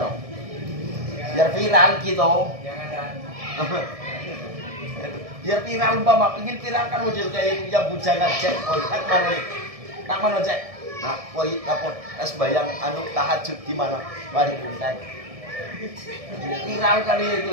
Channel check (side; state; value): left; late; 1.7 ms